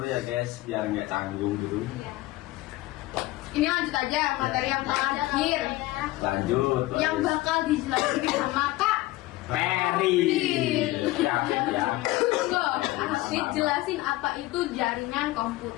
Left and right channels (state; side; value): quieter; right; 18.2 dB